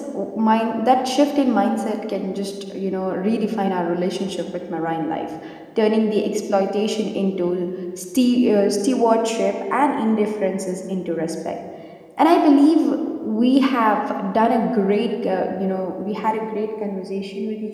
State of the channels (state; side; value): identical; both; correlation 1.00